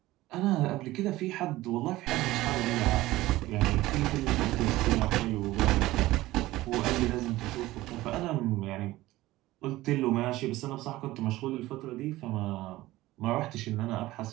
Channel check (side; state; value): left; quieter; 17.4 dB